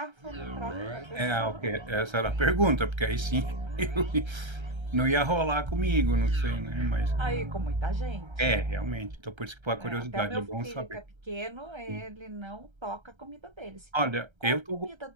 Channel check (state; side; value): late; left; 1.3 ms